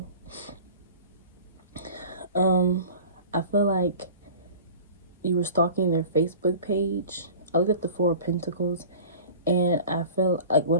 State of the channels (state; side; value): inverted; both; correlation -0.40